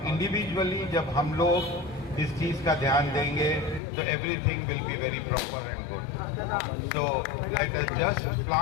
इंडिविजुअली जब हम लोग इस चीज़ का ध्यान देंगे तो everything will be very proper and good. So let us just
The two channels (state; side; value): drops out; right; at 3.8 s